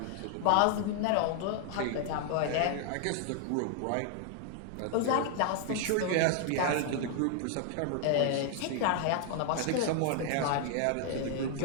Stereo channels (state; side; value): different; both; correlation 0.00